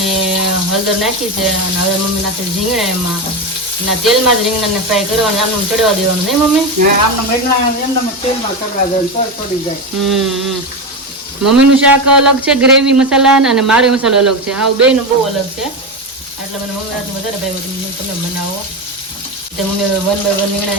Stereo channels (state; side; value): normal; both; correlation 0.16